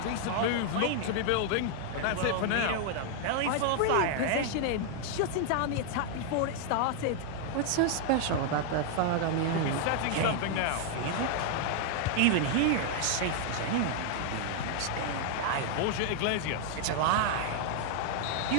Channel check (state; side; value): different; both; correlation 0.00